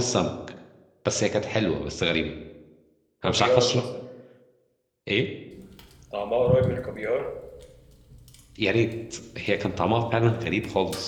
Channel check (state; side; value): identical; both; correlation 1.00